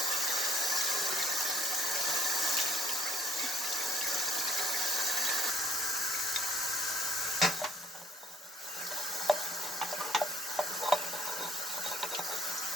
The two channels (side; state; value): both; normal; correlation 0.62